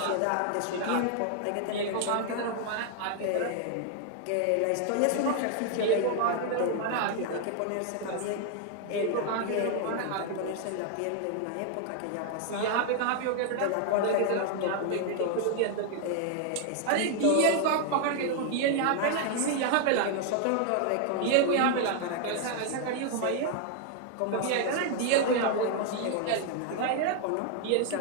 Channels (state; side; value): different; both; correlation 0.00